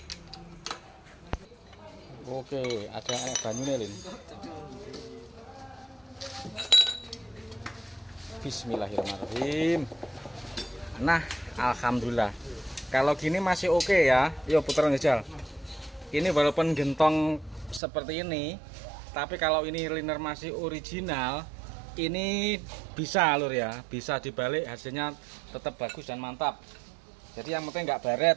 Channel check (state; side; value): drops out; left; at 17.8 s